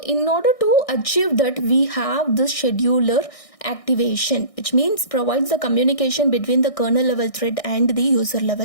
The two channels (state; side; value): late; right; 1.6 ms